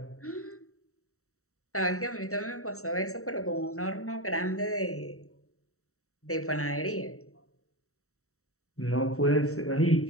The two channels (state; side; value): late; right; 0.64 ms